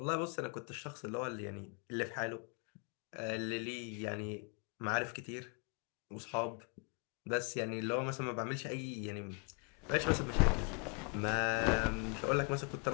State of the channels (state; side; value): quieter; right; 36.7 dB